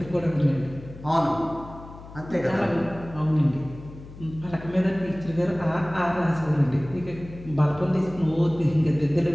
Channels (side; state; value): left; noise; hum, 16 dB below the sound